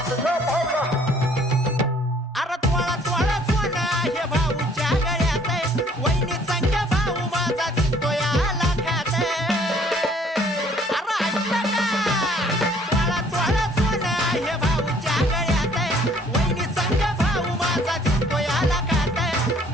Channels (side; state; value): both; normal; correlation 0.59